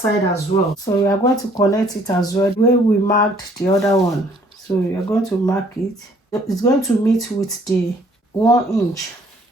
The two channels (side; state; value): both; normal; correlation 0.61